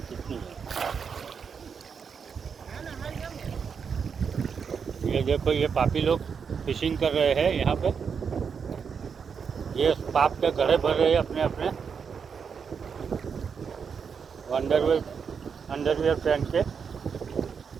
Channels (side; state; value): left; quieter; 6.4 dB